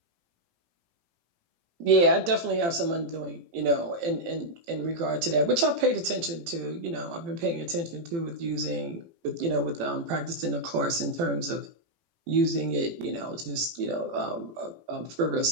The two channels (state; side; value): late; left; 18 ms